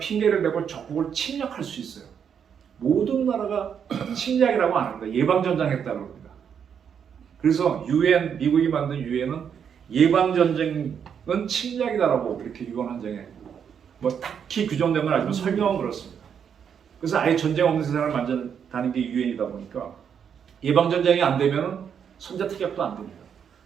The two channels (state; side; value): quieter; left; 7.7 dB